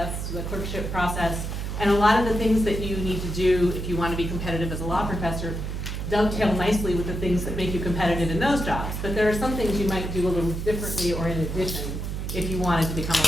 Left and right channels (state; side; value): noise; right; hum, 4 dB below the sound